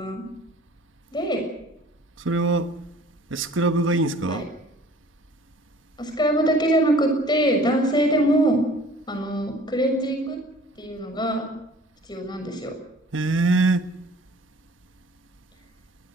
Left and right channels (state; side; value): normal; both; correlation 0.50